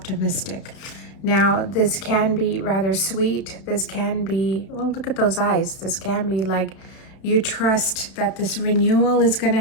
Now, this can be rather sweet. This can be, well, look at those eyes. This can be like you trust that this renewal is going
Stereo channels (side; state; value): right; late; 32 ms